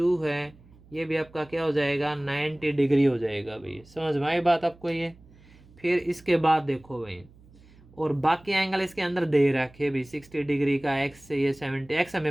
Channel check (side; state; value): right; noise; hum, 25 dB below the sound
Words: है, ये भी आपका क्या हो जाएगा 90 डिग्री हो जाएगा भाई। समझ में आई बात आपको ये। फिर इसके बाद देखो भाई, और बाकी एंगल इसके अंदर दे रखे भाई, 60 डिग्री का एक्स से ये 70, एक्स